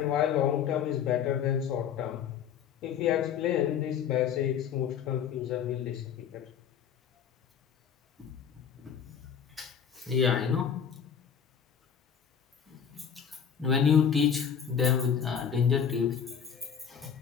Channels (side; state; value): right; quieter; 7.8 dB